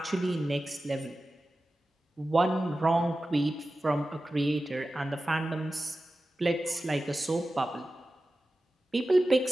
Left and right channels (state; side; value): normal; both; correlation 0.94